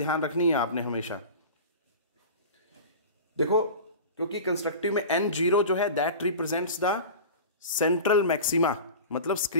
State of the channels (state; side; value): inverted; both; correlation -0.34